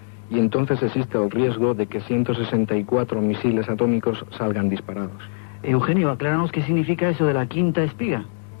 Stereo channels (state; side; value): silent; right; digital silence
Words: y entonces existe el riesgo de que 164 misiles atómicos salgan disparados. Eugenio, acláranos qué significa eso de la quinta espiga.